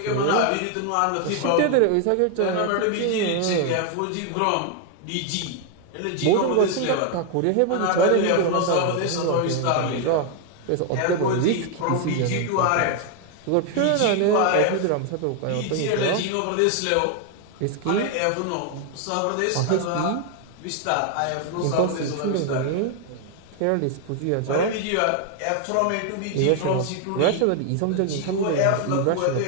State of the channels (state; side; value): different; both; correlation 0.01